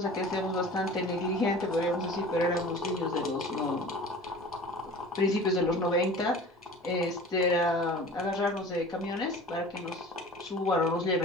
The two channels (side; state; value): both; normal; correlation 0.41